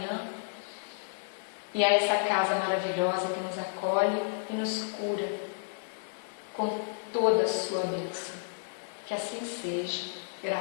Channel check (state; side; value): silent; right; digital silence